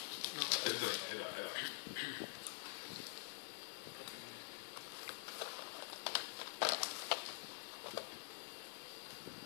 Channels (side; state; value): right; silent; digital silence